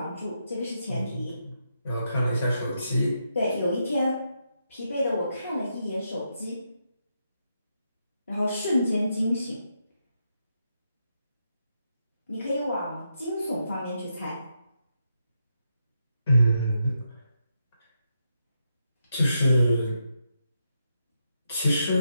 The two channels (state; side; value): inverted; both; correlation -0.82